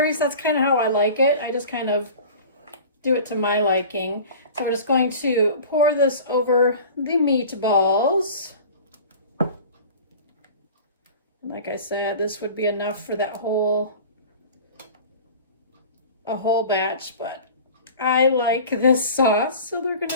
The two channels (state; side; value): inverted; both; correlation -0.40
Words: That's kind of how I like it. I just kind of do it to my liking. So we're just going to pour this over the meatballs. Like I said, this would be enough for that whole batch, but I like this sauce, so they're going